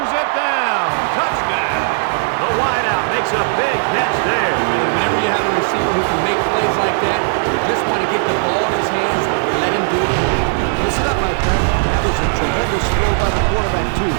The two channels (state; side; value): silent; left; digital silence